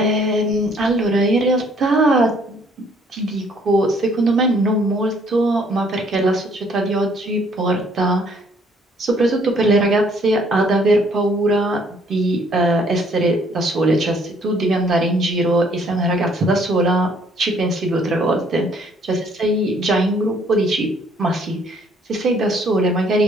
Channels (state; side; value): normal; both; correlation 0.63